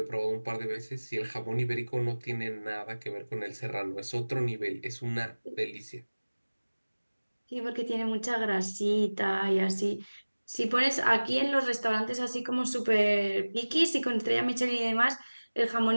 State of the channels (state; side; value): inverted; both; correlation -1.00